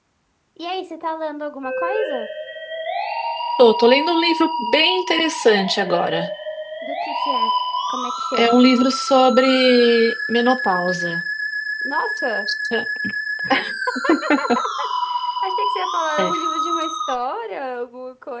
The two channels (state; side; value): identical; both; correlation 1.00